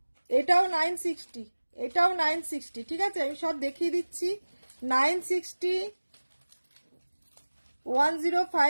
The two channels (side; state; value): both; inverted; correlation -1.00